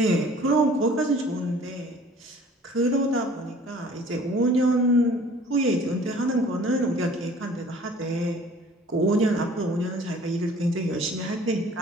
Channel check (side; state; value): both; normal; correlation 0.51